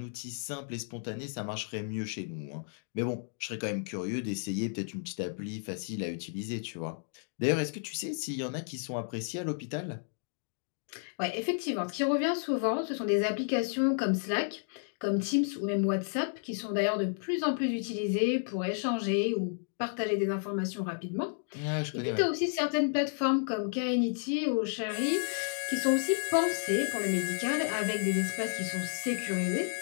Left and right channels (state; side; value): silent; right; digital silence